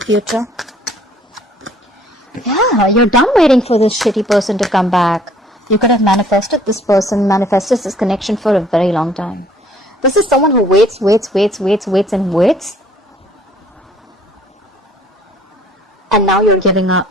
Yeah, you're done waiting for this shitty person to come back. You could have manifested this person, manifested this connection for a very long time. This is someone who waits. And now you're giving up.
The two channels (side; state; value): both; normal; correlation 0.58